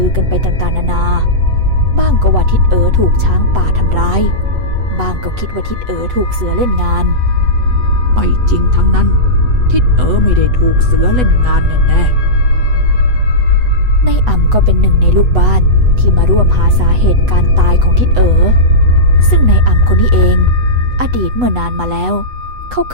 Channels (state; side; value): late; left; 8.0 ms